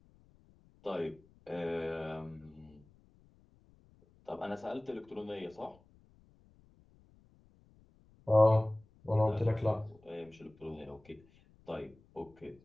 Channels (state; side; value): noise; left; rumble, 29 dB below the sound